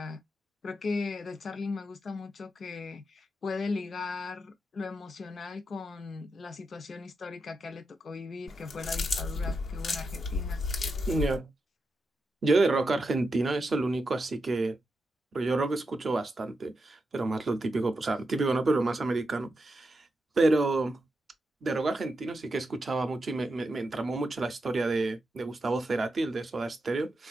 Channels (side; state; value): both; normal; correlation 0.87